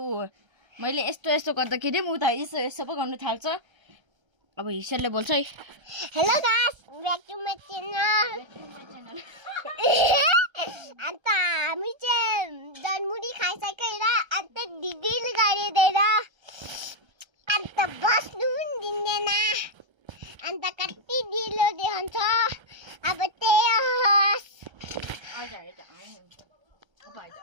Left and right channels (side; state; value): left; late; 1.3 ms